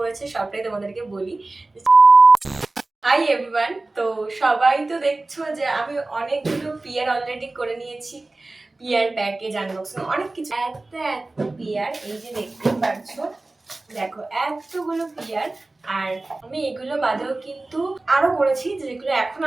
সবটাই তোমাদেরকে বলি। হাই এভরিওয়ান, তো সবাই তো দেখছো যে আমি অনেকগুলো পিয়ার অলরেডি করে নিয়েছি। পিয়ার প্যাকেজ আনবক্সিং অনেক কিছু। এত পিয়ার, এই যে দেখতে পাচ্ছো, দেখো এতগুলো পিয়ার। আর আমি এগুলো বাদেও কিন্তু আরো করেছি, যেগুলো এখন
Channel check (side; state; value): left; quieter; 3.0 dB